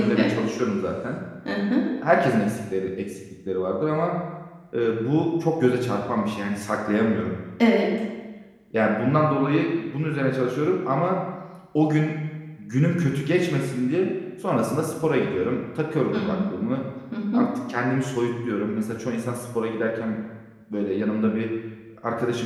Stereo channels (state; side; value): identical; both; correlation 1.00